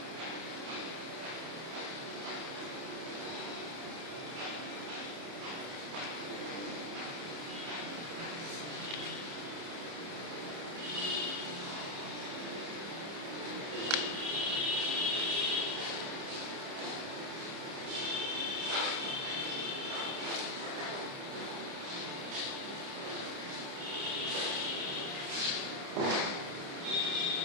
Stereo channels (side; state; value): left; late; 30 ms